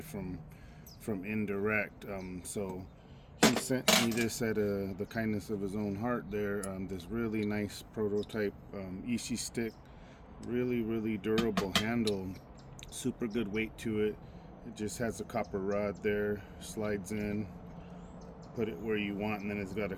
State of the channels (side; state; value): both; identical; correlation 1.00